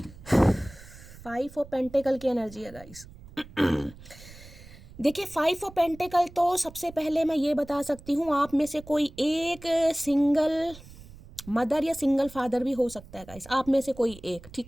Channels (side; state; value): right; noise; rumble, 19 dB below the sound